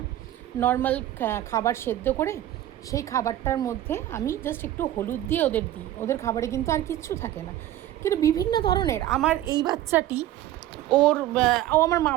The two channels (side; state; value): left; quieter; 13.4 dB